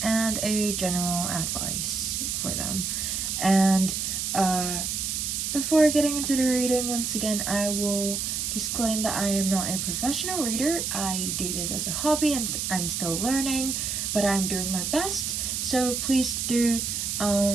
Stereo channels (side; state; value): right; noise; hiss, 1 dB below the sound